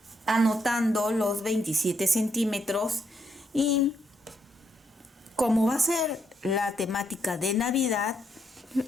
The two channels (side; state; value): both; normal; correlation 0.77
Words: anotando los 27 centímetros y como va a ser la temática de Navidad,